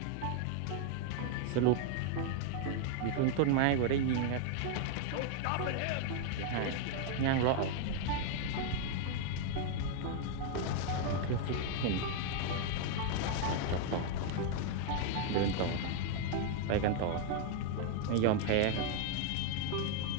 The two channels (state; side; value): different; both; correlation 0.00